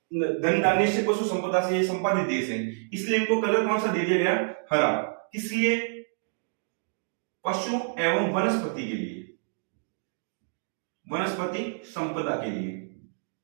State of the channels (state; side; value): silent; left; digital silence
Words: धन धान्य से, पशु संपदा से ये संपादित देश है, इसलिए इनको कलर कौन सा दे दिया गया, हरा। किसलिए, पशु एवं वनस्पति के लिए, वनस्पति संपदा के लिए